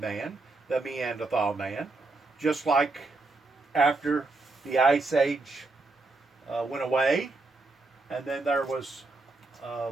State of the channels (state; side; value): quieter; left; 3.4 dB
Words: the Neanderthal man, just like after the Ice Age went away, and then there was